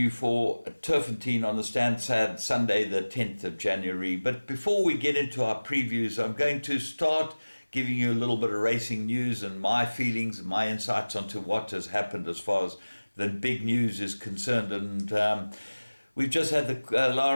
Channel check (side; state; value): both; inverted; correlation -1.00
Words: for Turffontein on the Stansted Sunday, the 10th of January. But before we get into our previews, I'm going to start giving you a little bit of racing news and my feelings and my insights onto what has happened as far as the big news is concerned. And we've just had the